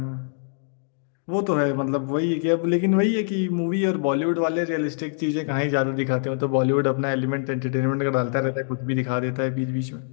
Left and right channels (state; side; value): silent; right; digital silence